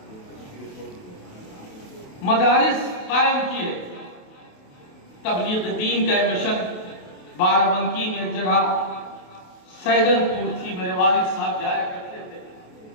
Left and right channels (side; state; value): right; late; 28 ms